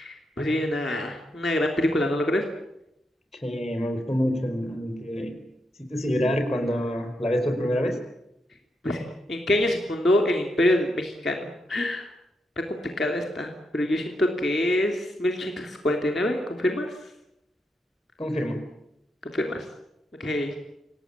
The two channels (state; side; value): normal; both; correlation 0.82